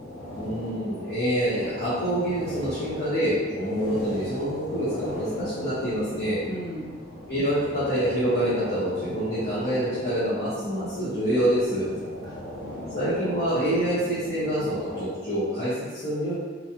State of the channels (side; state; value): both; normal; correlation 0.39